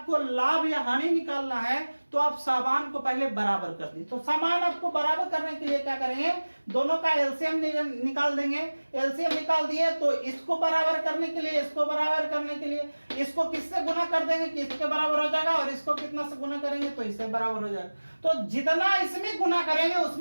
लाभ या हानि निकालना है, तो आप सामान को पहले बराबर कर दी। तो सामान आपको बराबर करने के लिए क्या करेंगे, दोनों का एलसीएम निकाल देंगे। एलसीएम निकाल दिए तो इसको बराबर करने के लिए, इसको बराबर करने के लिए इसको किससे गुना कर देंगे कि इसके बराबर हो जाएगा, और इसको कितना से गुना करेंगे तो इससे बराबर हो जाएगा। तो जितना इसमें गुना करेंगे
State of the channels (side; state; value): both; inverted; correlation -1.00